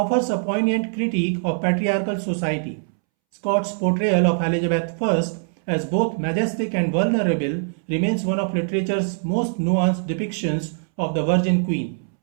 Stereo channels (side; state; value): left; silent; 64 dB below the other